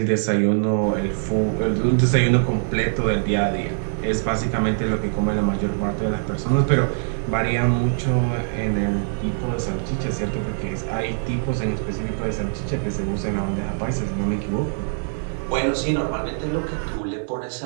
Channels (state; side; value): silent; left; digital silence